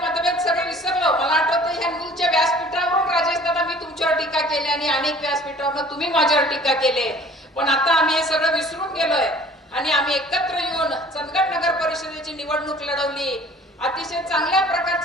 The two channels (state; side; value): normal; both; correlation 0.50